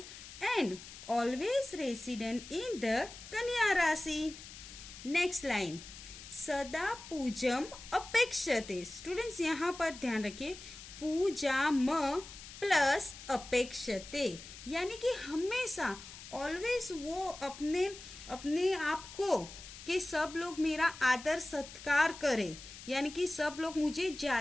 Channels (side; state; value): left; noise; hiss, 14 dB below the sound